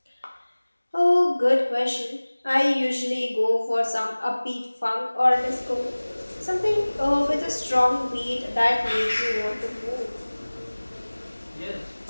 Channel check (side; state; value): both; inverted; correlation -1.00